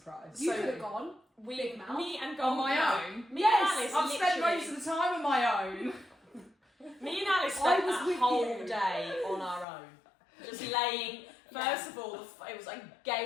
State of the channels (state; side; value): drops out; right; at 9.7 s